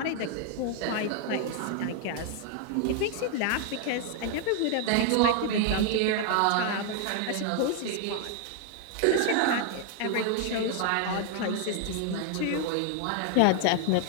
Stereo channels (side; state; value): both; different; correlation 0.00